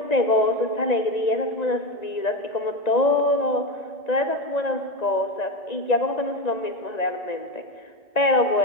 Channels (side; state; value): right; late; 1.9 ms